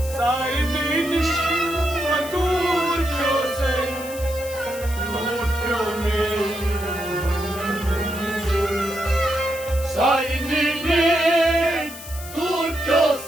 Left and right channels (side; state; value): left; noise; hiss, 13 dB below the sound